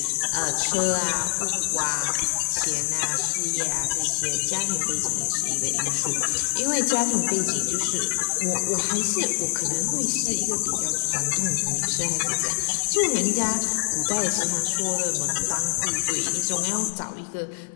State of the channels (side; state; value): right; silent; 57 dB below the other